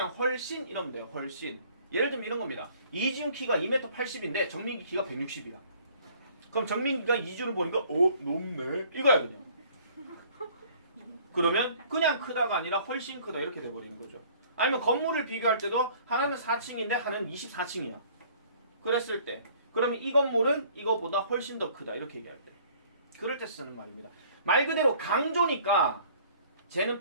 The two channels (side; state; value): both; inverted; correlation -0.55